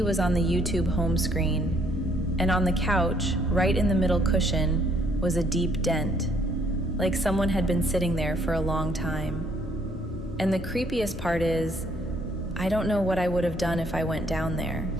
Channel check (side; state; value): both; normal; correlation 0.66